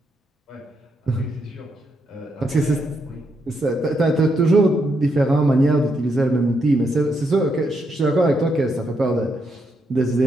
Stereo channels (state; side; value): normal; both; correlation 0.79